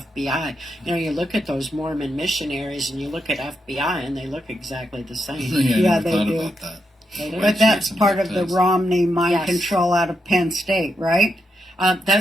You know, you look at those Mormon missionaries and you look at FBI and they look exactly the same. Yeah, they do. About that. They do. But that's part of the Romney mind control out of Penn State, right?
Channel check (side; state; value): both; normal; correlation 0.83